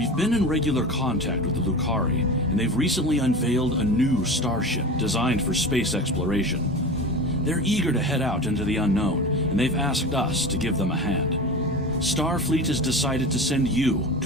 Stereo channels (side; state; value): both; normal; correlation 0.30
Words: We've been in regular contact with the Lucari, and they've recently unveiled a new starship designed for space exploration. They're eager to head out into the unknown, and they've asked us to give them a hand. Starfleet has decided to send you